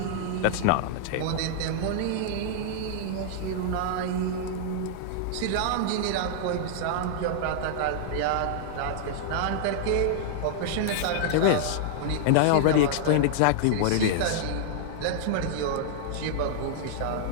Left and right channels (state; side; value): different; both; correlation -0.01